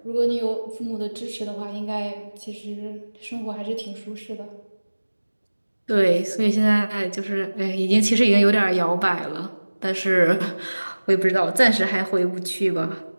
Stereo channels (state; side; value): inverted; both; correlation -1.00